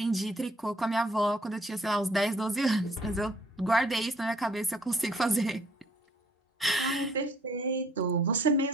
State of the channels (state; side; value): normal; both; correlation 0.61